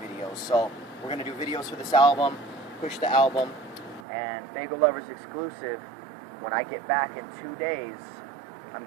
So we're going to do videos for this album, push the album, and Fago Lovers exclusive. When I get back in 2 days, I'm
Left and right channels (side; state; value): left; drops out; at 4.0 s